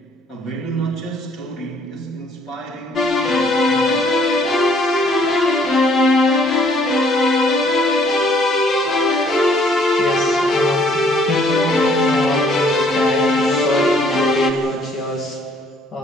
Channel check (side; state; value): both; normal; correlation 0.62